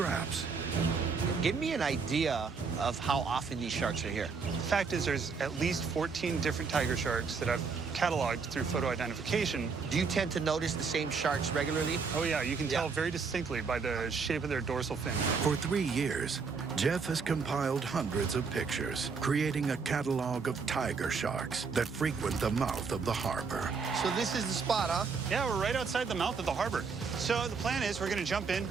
Give me an idea of how often these sharks are here. The fact is there's at least 14 different tiger sharks that I've cataloged through photo identification. Do you tend to notice the same sharks regularly? Oh yeah, you can tell very distinctly by the shape of their dorsal fin. For 3 years, Jeff has compiled hundreds of pictures, creating a catalog of tiger sharks that frequent the mouth of the harbor. So this is the spot, huh? Yeah, we're right outside the mouth of the harbor. So the plan is we're going to jump in.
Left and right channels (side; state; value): left; quieter; 5.2 dB